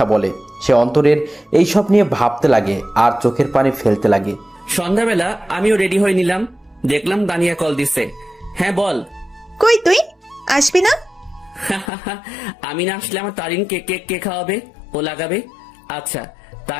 বলে। সে অন্তরের এইসব নিয়ে ভাবতে লাগে আর চোখের পানি ফেলতে লাগে। সন্ধ্যাবেলা আমিও রেডি হয়ে নিলাম, দেখলাম তানিয়া কল দিছে। হ্যাঁ বল। কই তুই আসবি না? আমি না আসলে আমার তারিনকে কেক কে খাওয়াবে, ও লাগাবে। আচ্ছা,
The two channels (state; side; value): drops out; right; at 11.9 s